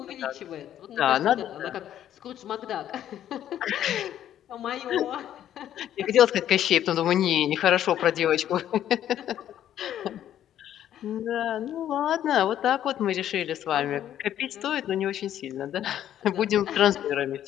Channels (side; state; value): right; quieter; 11.1 dB